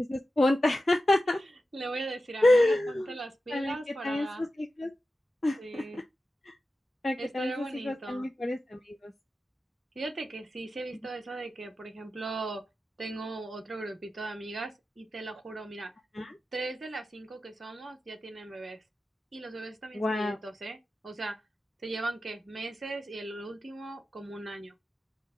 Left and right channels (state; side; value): normal; both; correlation 0.92